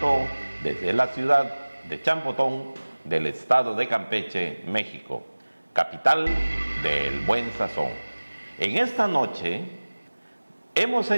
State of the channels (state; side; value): inverted; both; correlation -1.00